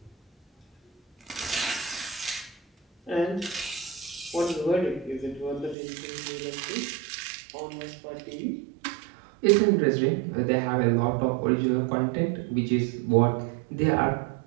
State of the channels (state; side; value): drops out; left; at 5.8 s